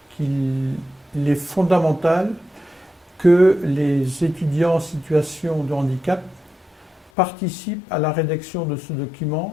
qu'il est fondamental que les étudiants en situation de handicap participent à la rédaction de ce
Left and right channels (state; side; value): drops out; right; at 7.1 s